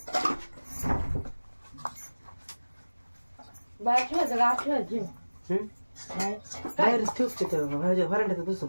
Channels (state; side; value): inverted; both; correlation -1.00